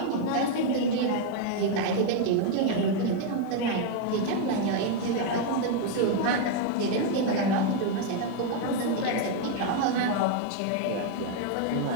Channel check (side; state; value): both; different; correlation 0.01